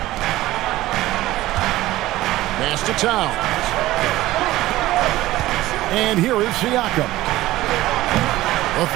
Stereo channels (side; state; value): left; quieter; 16.5 dB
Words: Pass to Towns. And here is Siakam. A